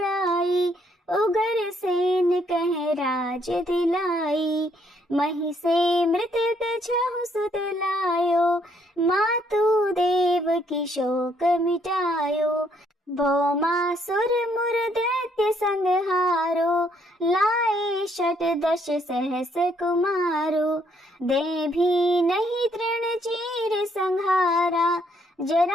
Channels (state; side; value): normal; both; correlation 0.70